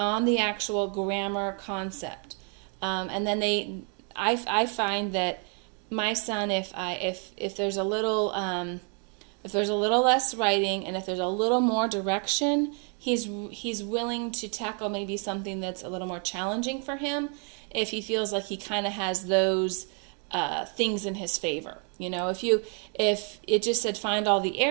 the actual grammar concept. And then I find that my son, if there's a little less writing and if there's a little more direction, he's willing to tackle maybe something that's a little more challenging for him if he feels like he kind of has those things in his favor. If it just said find all the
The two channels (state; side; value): quieter; left; 40.0 dB